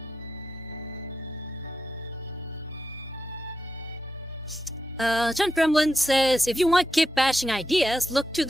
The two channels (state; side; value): normal; both; correlation 0.87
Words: John Gremlin says, if you want kit bashing ideas, look to